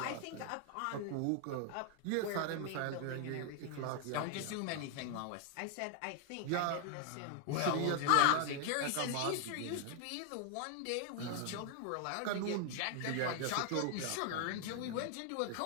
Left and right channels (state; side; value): different; both; correlation 0.00